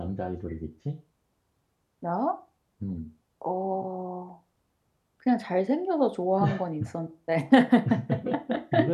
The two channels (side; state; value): both; identical; correlation 1.00